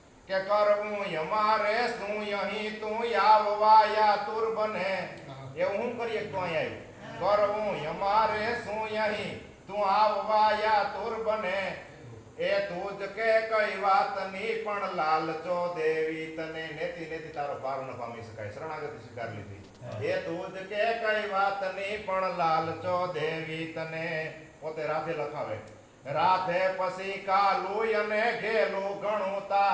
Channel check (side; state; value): both; identical; correlation 1.00